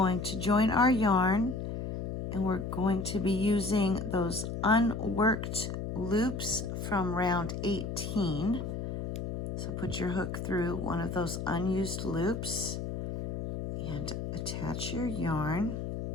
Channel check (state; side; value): noise; left; hum, 5 dB below the sound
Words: to join our yarn, and we're going to be using those unworked loops from round 18. So put your hook through one of those unused loops and attach your yarn.